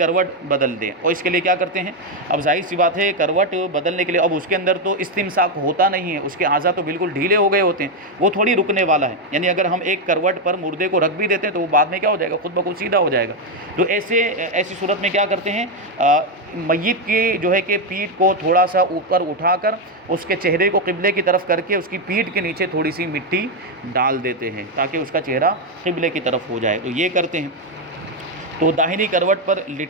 بدل دیں. اور اس کے لیے کیا کرتے ہیں؟ اب ظاہر سی بات ہے کروٹ بدلنے کے لیے اب اس کے اندر تو استمساک ہوتا نہیں ہے، اس کے اعضاء تو بالکل ڈھیلے ہو گئے ہوتے ہیں، وہ تھوڑی رکنے والا ہے. یعنی اگر ہم ایک کروٹ پر مردے کو رکھ بھی دیتے ہیں تو وہ بعد میں کیا ہو جائے گا؟ خود بخود سیدھا ہو جائے گا. تو ایسی صورت میں کیا کرتے ہیں؟ میت کی جو ہے کہ پیٹھ کو تھوڑا سا اوپر اٹھا کر اس کے چہرے کو قبلے کی طرف کر کے اس کی پیٹھ کے نیچے تھوڑی سی مٹی ڈال دیتے ہیں تاکہ اس کا چہرہ قبلے کی طرف ہو جائے. تو یہ کرتے ہیں. تو داہنی کروٹ پر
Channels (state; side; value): normal; both; correlation 0.05